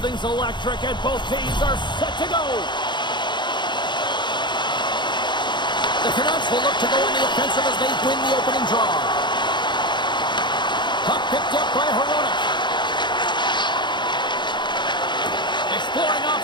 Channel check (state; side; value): late; right; 0.22 ms